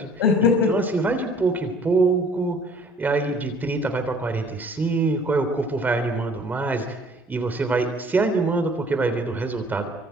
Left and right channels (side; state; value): both; normal; correlation 0.54